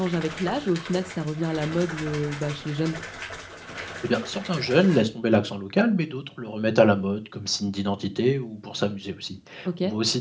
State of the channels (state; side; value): identical; both; correlation 1.00